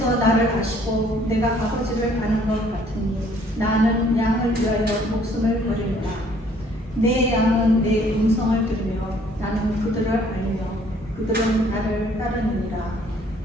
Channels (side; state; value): both; normal; correlation 0.60